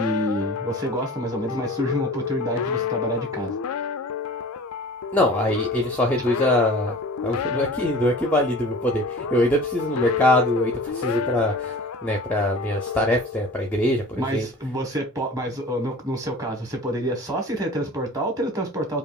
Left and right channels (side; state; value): both; normal; correlation 0.41